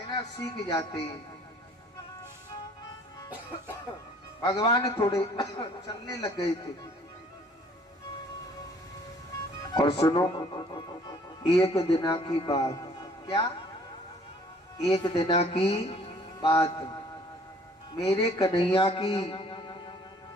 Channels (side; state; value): both; normal; correlation 0.57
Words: सीख जाते। भगवान थोड़े चलने लग गए थे। और सुनो एक दिना की बात, क्या? एक दिना की बात, मेरे कन्हैया की